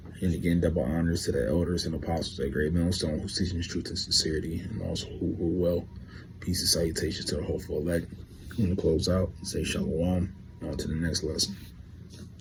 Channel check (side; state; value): both; identical; correlation 1.00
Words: And again, double honors to the elders and apostles at Great Millstone, who's teaching truth and sincerity, and also who well. Peace and salutations to the hopeful elect. I'm going to close out and say shalom. On to the next lesson.